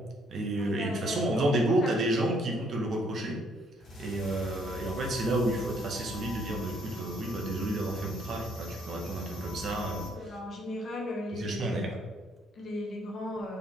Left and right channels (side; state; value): both; normal; correlation 0.67